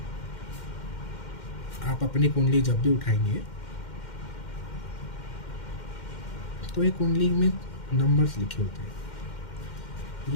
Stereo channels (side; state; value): right; late; 2.1 ms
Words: आप अपनी कुंडली जब भी उठाएंगे तो ये कुंडली में नंबर्स लिखे होते हैं।